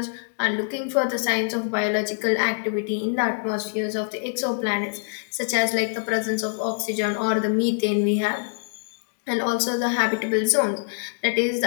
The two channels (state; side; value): silent; right; digital silence